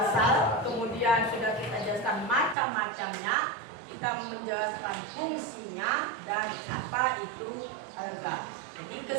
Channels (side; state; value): left; drops out; at 2.6 s